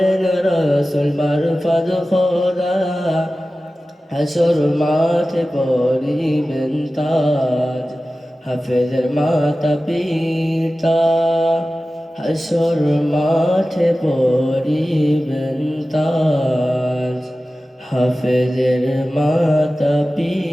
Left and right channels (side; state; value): both; normal; correlation 0.95